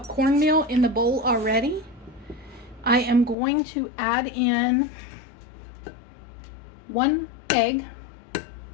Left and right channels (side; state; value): right; drops out; at 3.4 s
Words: cornmeal in the bowl already. I am going to add in 1 egg. Let